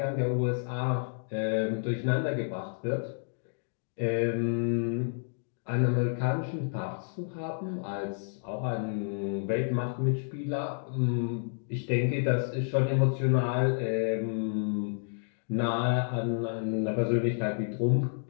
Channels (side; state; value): right; silent; digital silence